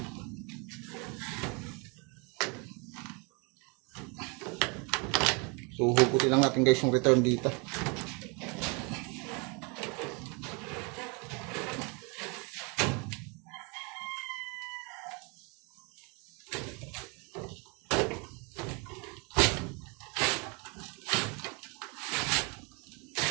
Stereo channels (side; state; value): left; quieter; 31.8 dB